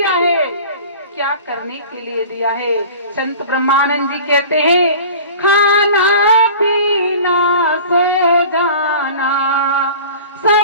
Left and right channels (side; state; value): both; inverted; correlation -0.41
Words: है, क्या करने के लिए दिया है। संत ब्रह्मानंद जी कहते हैं खाना पीना सो जाना